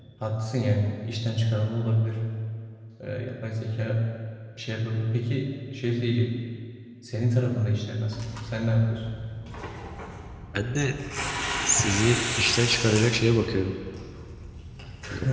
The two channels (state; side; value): identical; both; correlation 1.00